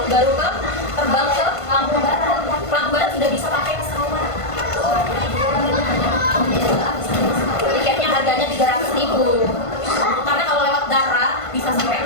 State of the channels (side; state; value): right; late; 1.5 ms